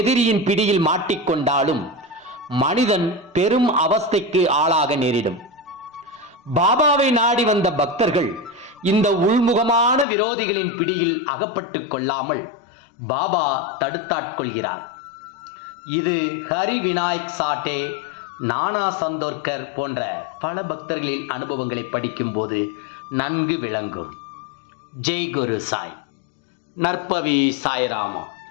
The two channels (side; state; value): right; drops out; at 10.1 s